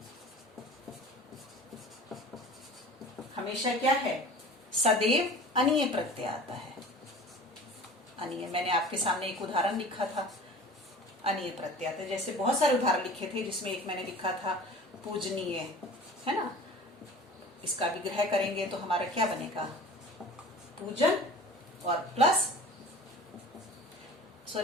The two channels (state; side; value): normal; both; correlation 0.41